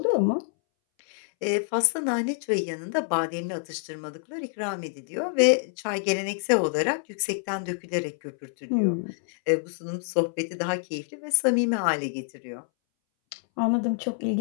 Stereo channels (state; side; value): silent; right; 60 dB below the other